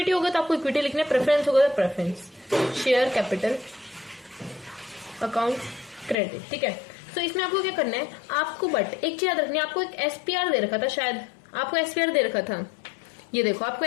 होगा तो आपको इक्विटी लिखना है, प्रेफरेंस होगा तो preference, share capital account credit, ठीक है। तो इसमें आपको क्या करना है, आपको बट एक चीज याद रखनी है, आपको एक एसपीआर दे रखा था, शायद आपको एसपीआर दे रखा था, ये देखो आपको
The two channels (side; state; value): right; drops out; at 6.2 s